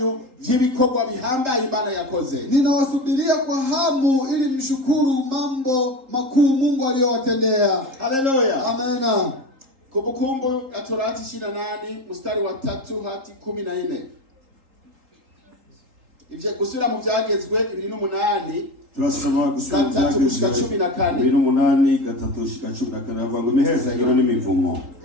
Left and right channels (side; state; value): left; late; 3.8 ms